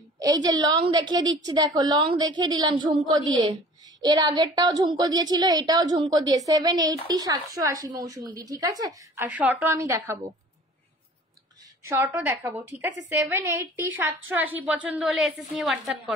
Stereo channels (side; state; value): both; normal; correlation 0.47